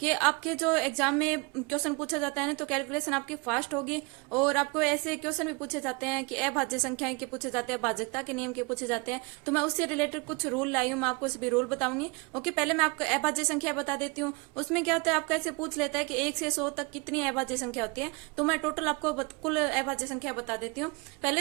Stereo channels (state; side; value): quieter; left; 28.5 dB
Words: कि आपके जो एग्जाम में क्वेश्चन पूछा जाता है ना, तो कैलकुलेशन आपकी फास्ट होगी। और आपको ऐसे क्वेश्चन भी पूछे जाते हैं कि अभाज्य संख्याएं के पूछे जाते हैं, भाजकता के नियम के पूछे जाते हैं। तो मैं उससे रिलेटेड कुछ रूल लाई हूँ, मैं आपको सभी रूल बताऊंगी। ओके, पहले मैं आपको अभाज्य संख्या बता देती हूँ। उसमें क्या होता है, आपका ऐसे पूछ लेता है कि 1 से 100 तक कितनी अभाज्य संख्या होती है। तो मैं टोटल आपको कुल अभाज्य संख्या बता देती हूँ।